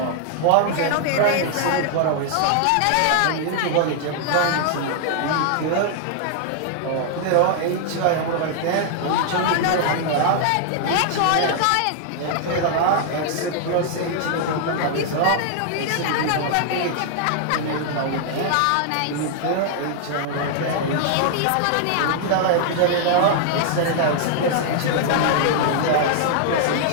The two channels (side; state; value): both; different; correlation 0.00